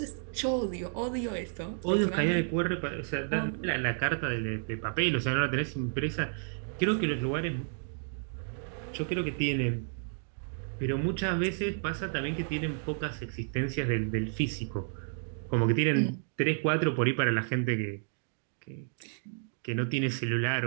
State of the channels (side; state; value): left; silent; digital silence